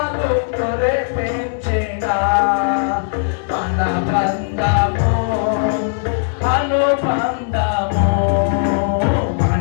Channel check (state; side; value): silent; right; 67 dB below the other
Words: కురిపించేనా మన బంధము అనుబంధము